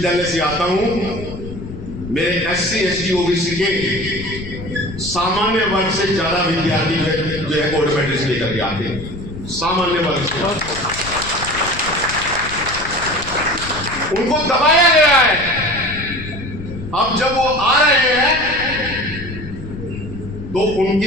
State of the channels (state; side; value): noise; left; rumble, 11 dB below the sound